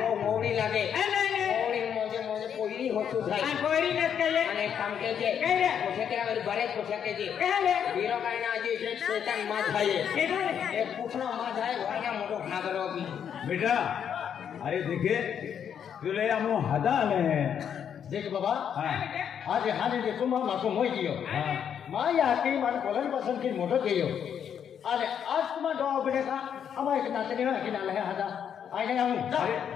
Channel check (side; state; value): right; quieter; 8.4 dB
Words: वो मोड़ी लागे नहीं मोड़ी मोजे कोइरी होतु थाई आ कोई न कहे અને કામ કે છે કઈ પૂછે કે હવે બરે પૂછે કે છે कहले હીરો કાઈ ના જે છે શેતાન માં થાય केडो रे એક પૂછનો માં થાય વાયા મોટો ખાગરો બી बेटा अरे देखे तुले हम हदा आले हैं देख बाबा हाँ आज हाने दे तुम माको मोई दियो हाँ माया की मन कोलन पसंद की मोटो गयो अरे आज तुम दो बड़े का हम एक नातनी है कि नाल है हदा आने हम